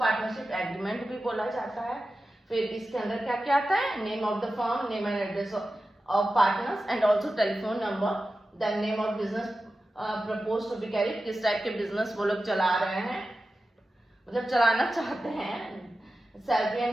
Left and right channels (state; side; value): normal; both; correlation 0.93